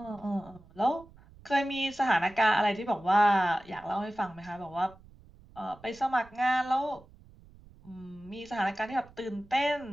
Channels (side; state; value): right; noise; rumble, 24 dB below the sound